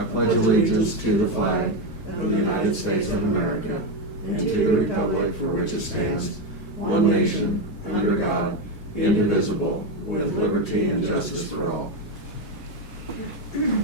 pledge allegiance to the flag of the United States of America and to the republic for which it stands, one nation, under God, indivisible, with liberty and justice for all.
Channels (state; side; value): normal; both; correlation 0.10